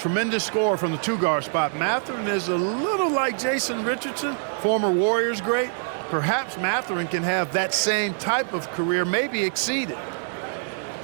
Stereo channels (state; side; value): silent; left; digital silence